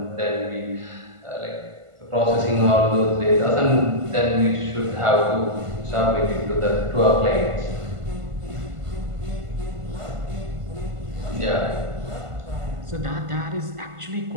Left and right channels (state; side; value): late; left; 1.5 ms